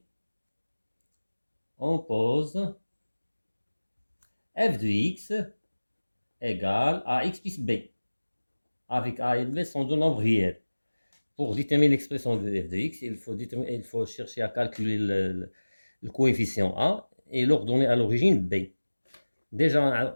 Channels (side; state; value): both; inverted; correlation -1.00